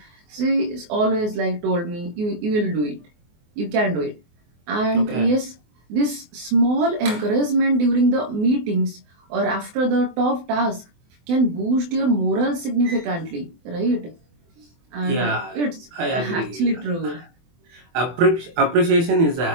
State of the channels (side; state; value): left; late; 24 ms